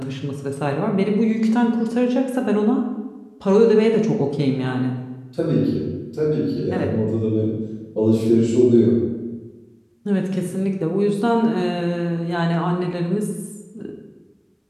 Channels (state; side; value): identical; both; correlation 1.00